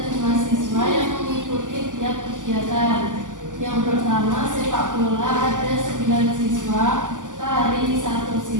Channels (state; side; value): late; left; 0.87 ms